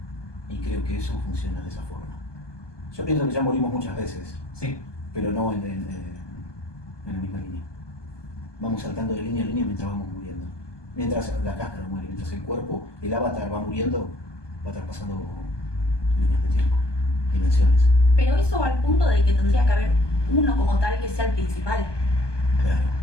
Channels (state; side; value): late; right; 1.2 ms